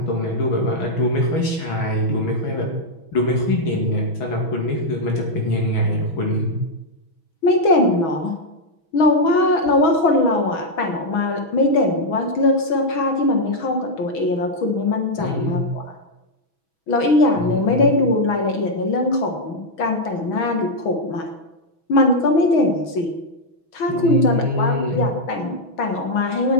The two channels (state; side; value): late; right; 6.2 ms